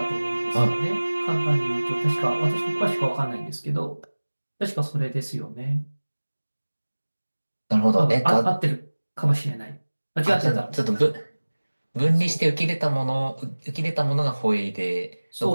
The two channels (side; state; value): both; inverted; correlation -1.00